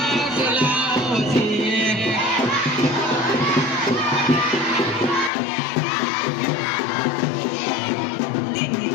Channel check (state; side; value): drops out; right; at 5.3 s